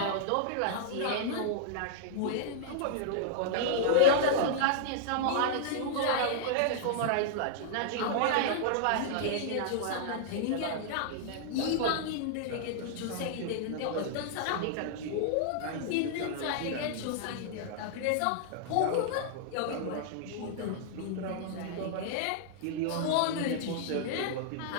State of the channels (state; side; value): different; both; correlation -0.01